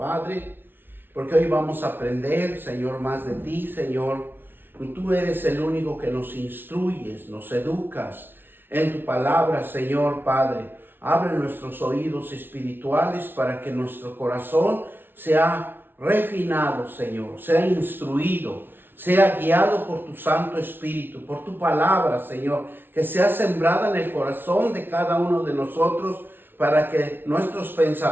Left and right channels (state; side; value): late; left; 0.10 ms